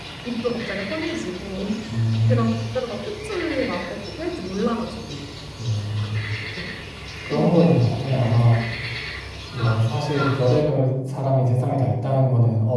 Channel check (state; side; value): identical; both; correlation 1.00